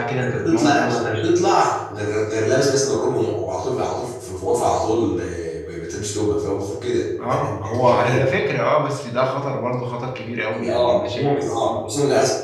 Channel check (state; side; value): identical; both; correlation 1.00